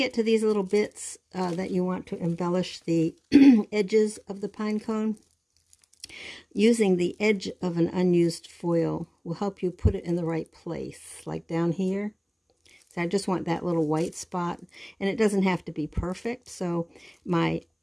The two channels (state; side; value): identical; both; correlation 1.00